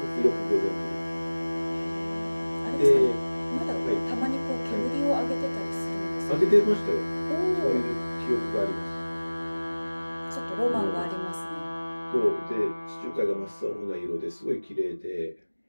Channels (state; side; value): inverted; both; correlation -1.00